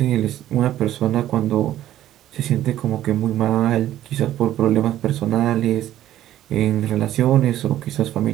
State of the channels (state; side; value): quieter; left; 12.9 dB